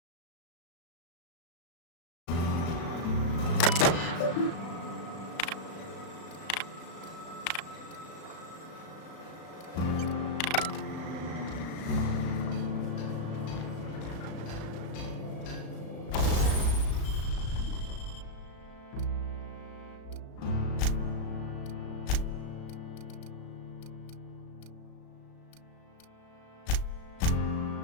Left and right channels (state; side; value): late; right; 35 ms